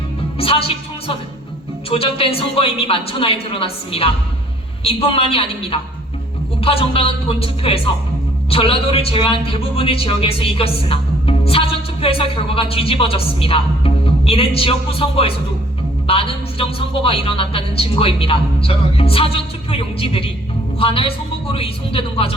사실 총선은 조작된 선거임이 만천하에 드러났습니다. 이뿐만이 아닙니다. 우파 정당은 본 투표에서 전라도를 제외한 대부분의 지역에서 이겼으나 사전투표에서 결과가 뒤집어졌습니다. 이는 지역구 선거에서도 많은 부정선거가 일어났다는 증거입니다. 사전투표 용지들이 관할 선거구로 이송되는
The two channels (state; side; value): normal; both; correlation 0.59